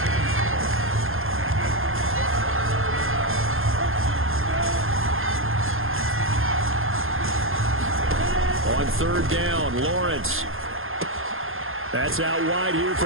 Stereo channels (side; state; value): left; late; 0.60 ms